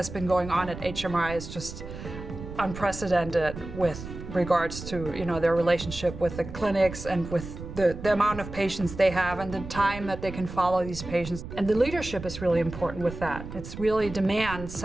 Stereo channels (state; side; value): noise; right; rumble, 11 dB below the sound